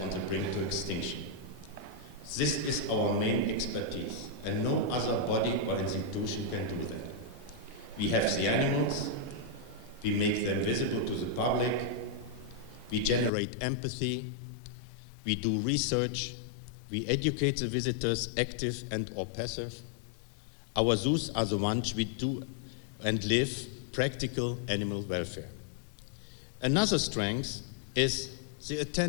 on the brink to extinction. This is our main expertise, and no other body or institution can do that. We have the animals, we make them visible to the public, we generate empathy, we do research, we educate the visitors, active and or passive. Our zoos are the ones we do and live practical animal welfare. Another strength is the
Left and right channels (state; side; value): drops out; right; at 13.3 s